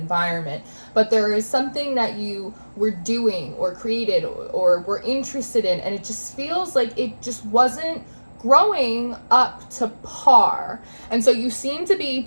But there is something that you were doing or created or were interested in, and it just feels like it just wasn't growing up to par. And so you seem to be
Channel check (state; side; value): inverted; both; correlation -1.00